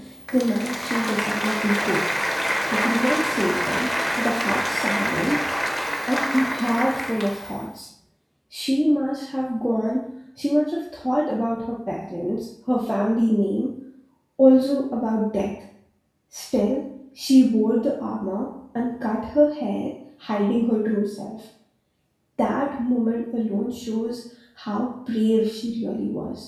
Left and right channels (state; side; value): identical; both; correlation 1.00